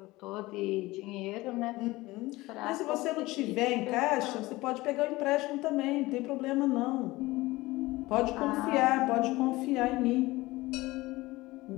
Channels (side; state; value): right; quieter; 19.8 dB